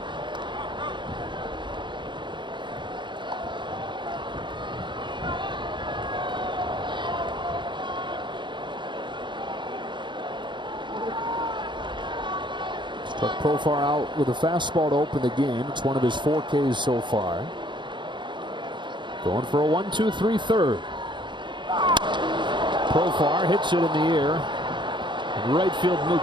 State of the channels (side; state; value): left; late; 0.23 ms